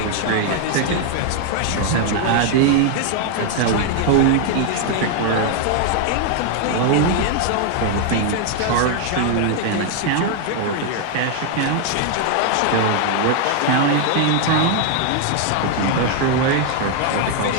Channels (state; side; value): different; both; correlation 0.00